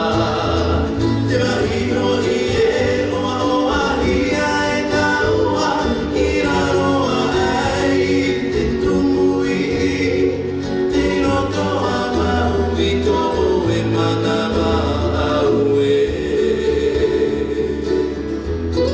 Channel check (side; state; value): both; identical; correlation 1.00